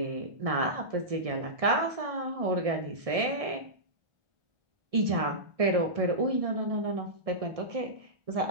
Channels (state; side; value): late; left; 1.6 ms